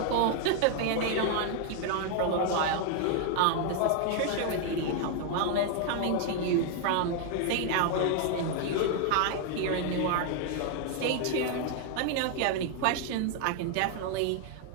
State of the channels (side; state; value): both; different; correlation 0.00